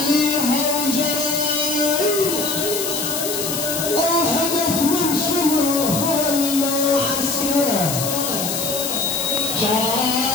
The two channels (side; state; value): left; noise; hiss, 3 dB below the sound